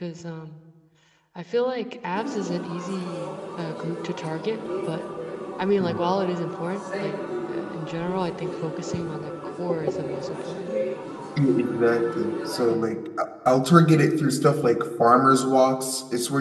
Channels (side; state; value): both; identical; correlation 1.00